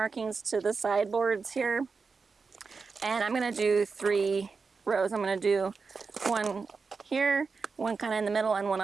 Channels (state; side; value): quieter; left; 4.8 dB